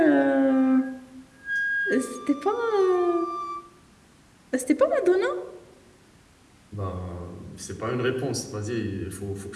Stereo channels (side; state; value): both; identical; correlation 1.00